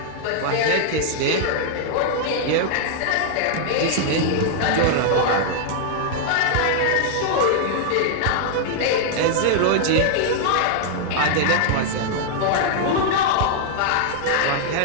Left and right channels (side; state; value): both; different; correlation -0.01